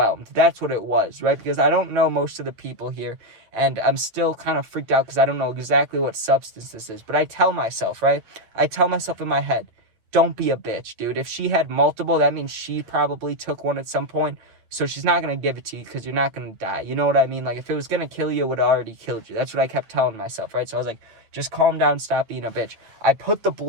That's what it was, right? Because I don't know most of the people here, and I'm still kind of freaked out because I don't know exactly what substance this is. But I tell myself, right? I tell myself in my head, don't be a bitch, dude. If she had multiple, that means she probably took one at some point. So she's not going to give it to you because you're not going to die. You know what I mean? Like, if it was going to kill you, it would have already killed you. That's what I kept telling myself, right? So I was like, just calm down, stop being a bitch. I put the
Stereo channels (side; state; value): left; late; 9.4 ms